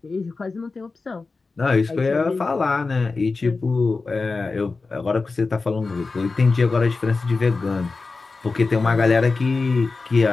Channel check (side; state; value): right; quieter; 4.0 dB